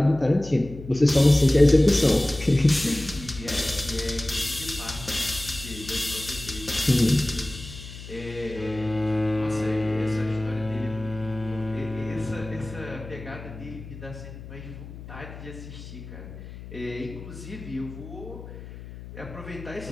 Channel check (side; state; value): left; noise; hum, 13 dB below the sound